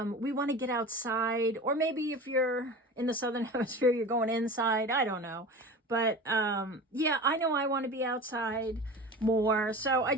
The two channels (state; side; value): normal; both; correlation 0.34